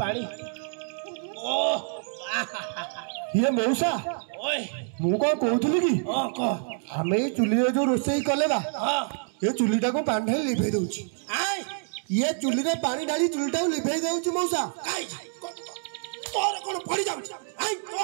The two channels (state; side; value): silent; left; 56 dB below the other